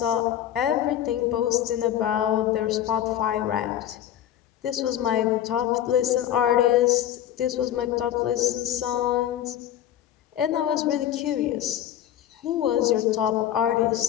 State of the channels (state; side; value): quieter; right; 11.3 dB